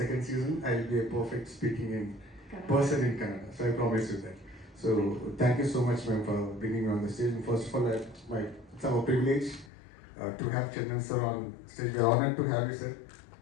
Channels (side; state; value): right; drops out; at 9.7 s